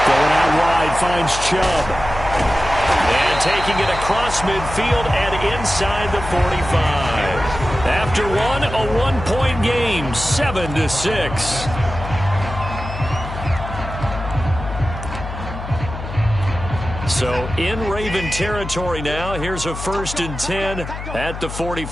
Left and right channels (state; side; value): noise; left; hum, 8 dB below the sound